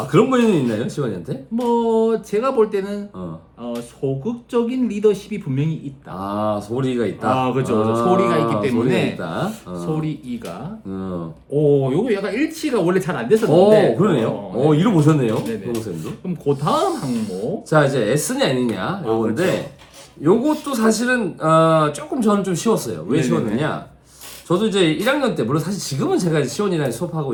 그런 면이 있나요, 시원이한테? 뭐 제가 볼 때는 소극적인 리더십이 분명히 있다. 아 소리가 있다. 그렇죠. 소리가 있기 때문에 소리가 있다. 소리가. 요거 약간 일치가 원래 잘 안 됐었는데. 그러네요. 네. 이로 보셨네요, 네네. 동생도. 그럼 그 다음 항목. 자 이제 S냐 N이냐 요건데 요것도 사실은 조금 저는 좀 쉬웠어요. 왜 네네네. 쉬웠느냐? 저도 이제 1학년 때 물론 사실 지금은 제가 이제 시원이랑 수업하고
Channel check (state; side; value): identical; both; correlation 1.00